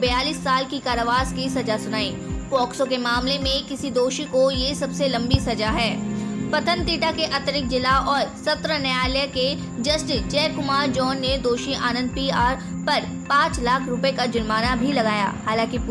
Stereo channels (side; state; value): both; identical; correlation 1.00